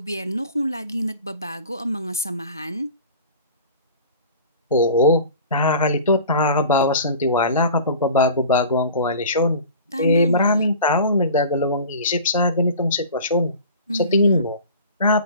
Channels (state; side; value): inverted; both; correlation -0.41